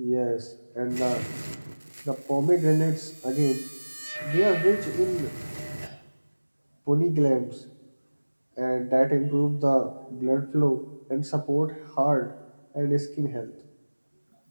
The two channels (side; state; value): both; inverted; correlation -1.00